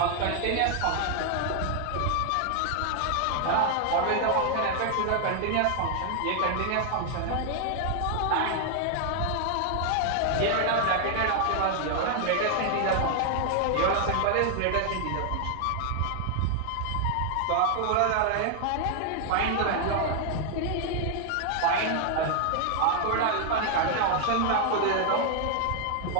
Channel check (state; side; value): different; both; correlation 0.00